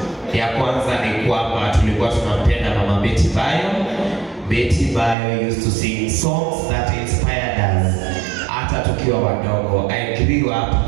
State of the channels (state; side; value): drops out; left; at 5.2 s